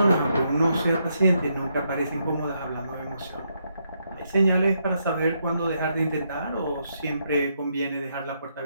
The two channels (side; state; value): both; inverted; correlation -0.78